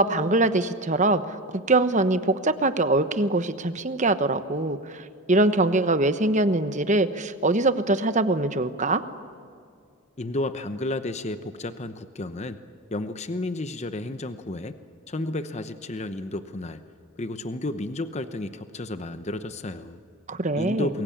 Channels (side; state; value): both; normal; correlation 0.28